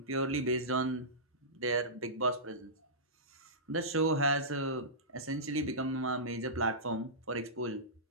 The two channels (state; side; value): normal; both; correlation -0.18